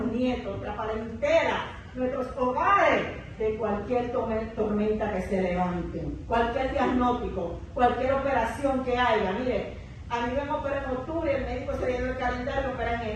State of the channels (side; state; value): both; identical; correlation 1.00